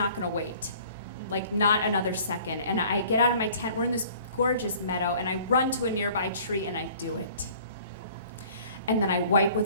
gonna wait. Like, not another second. And I get out of my tent, we're in this gorgeous meadow, and I run to a nearby tree, and I do it. And then I wipe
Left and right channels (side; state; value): both; inverted; correlation -0.51